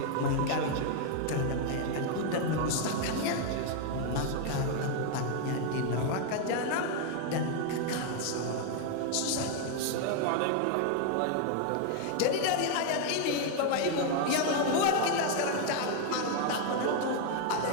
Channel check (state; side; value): different; both; correlation 0.00